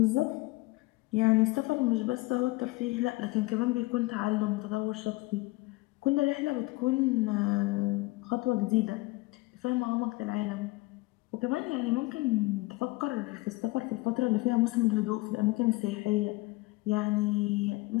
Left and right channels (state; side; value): quieter; right; 22.1 dB